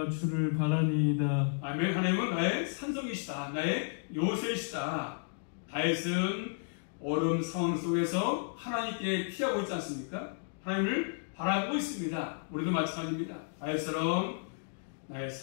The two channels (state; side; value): silent; right; digital silence